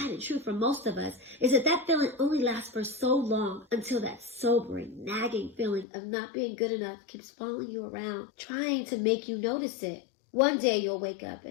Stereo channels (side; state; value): right; drops out; at 5.9 s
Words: and true for most of us is that feeling only lasts for so long until that sobering, nagging feeling of not being good enough keeps following you around, trying to make you notice it. One day you'll wake up